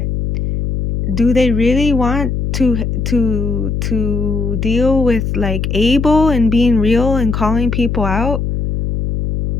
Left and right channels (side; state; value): left; noise; hum, 2 dB below the sound